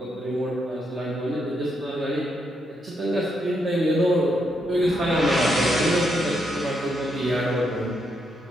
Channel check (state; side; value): normal; both; correlation 0.79